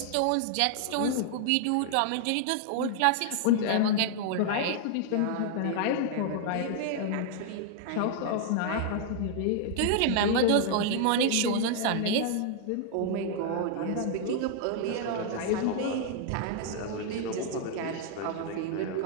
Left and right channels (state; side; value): different; both; correlation -0.01